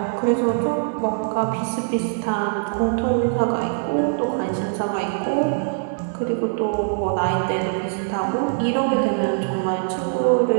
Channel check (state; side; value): silent; left; digital silence